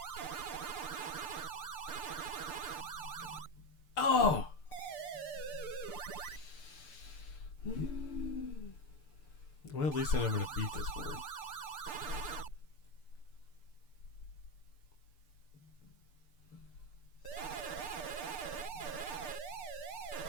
Oh! Well, at least I know I'm going to beat this board.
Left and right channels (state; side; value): late; right; 6.8 ms